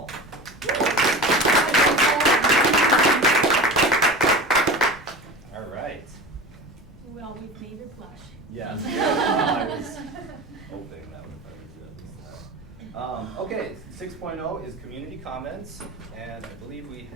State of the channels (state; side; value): normal; both; correlation 0.32